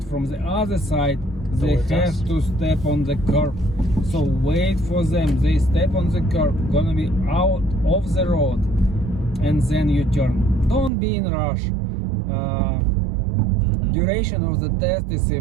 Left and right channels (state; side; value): drops out; left; at 10.9 s